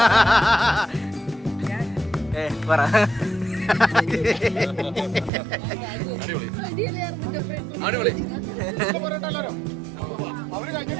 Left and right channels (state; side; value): drops out; left; at 5.3 s